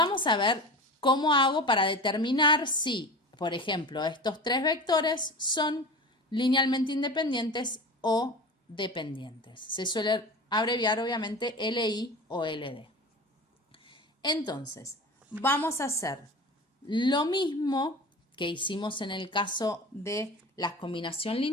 a ver cómo hago para determinar si, por ejemplo, estos tres vectores son linealmente independientes o dependientes. Se suele abreviar obviamente LI o LD. Entonces, vamos a hacer lo mismo que hicimos en el caso de la combinación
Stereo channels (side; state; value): both; normal; correlation 0.33